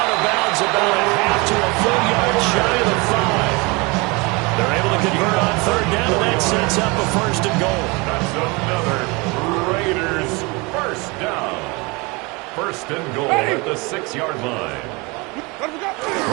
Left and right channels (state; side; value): quieter; left; 26.8 dB